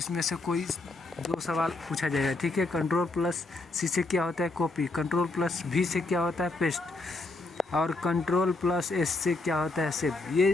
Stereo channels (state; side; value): quieter; right; 3.2 dB